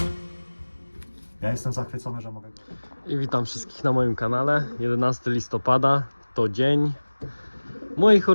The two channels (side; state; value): both; inverted; correlation -1.00